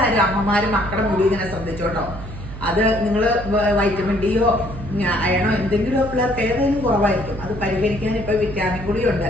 അമ്മമാരും മക്കളുടെ മുടി ഇങ്ങനെ ശ്രദ്ധിച്ചോട്ടോ. അത് നിങ്ങൾ വൈറ്റമിൻ ഡിയോ അയണോ എന്തെങ്കിലും പിള്ളേർക്ക് ഏതെങ്കിലും കുറവായിരിക്കും. അത് പരിഹരിക്കാൻ ഇപ്പോൾ വിറ്റാമിൻ ഗുളിയുണ്ട്.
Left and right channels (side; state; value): right; noise; hum, 11 dB below the sound